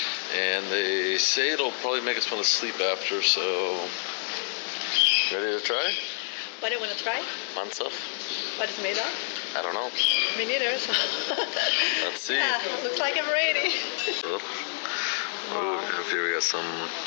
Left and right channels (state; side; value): silent; right; 60 dB below the other